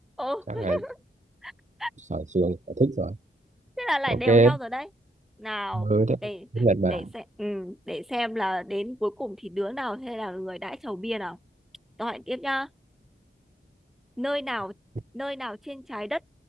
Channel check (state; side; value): normal; both; correlation 0.75